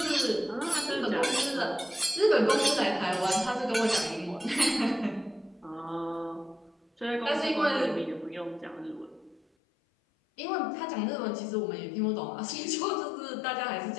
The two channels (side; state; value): right; drops out; at 9.4 s